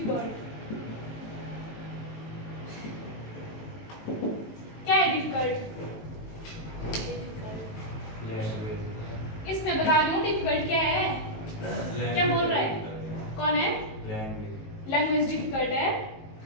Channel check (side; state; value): right; late; 19 ms